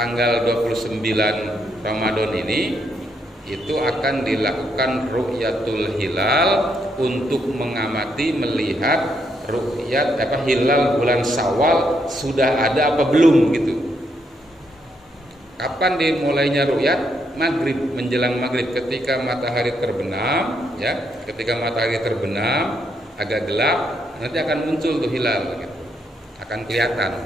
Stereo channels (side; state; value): both; normal; correlation 0.76